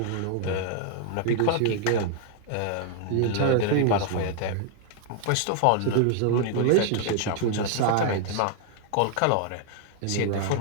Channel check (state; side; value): different; both; correlation 0.00